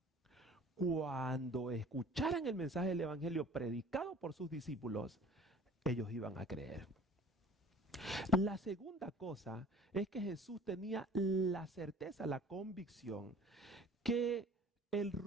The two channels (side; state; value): both; normal; correlation 0.46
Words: cuando escucharan el mensaje del Evangelio predicado por sus discípulos, ellos iban a creer. La segunda cosa es que Jesús tenía la certeza, la convicción, que el